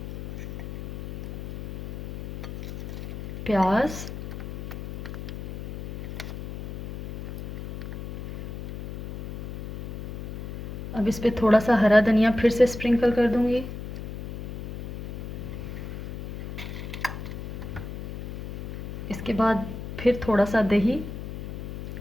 प्याज, अब इस पे थोड़ा सा हरा धनिया फिर से स्प्रिंकल कर दूंगी। इसके बाद फिर थोड़ा सा दही,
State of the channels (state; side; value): noise; left; hum, 7 dB below the sound